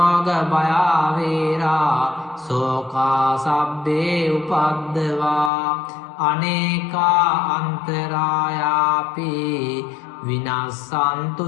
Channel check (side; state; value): right; drops out; at 5.5 s